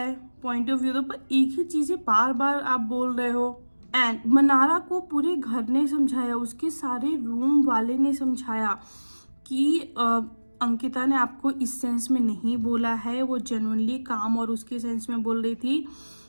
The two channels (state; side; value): inverted; both; correlation -1.00